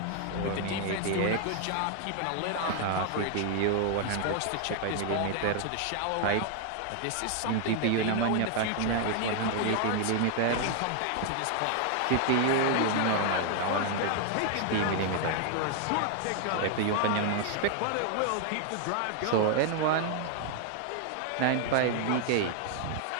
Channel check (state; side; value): different; both; correlation 0.00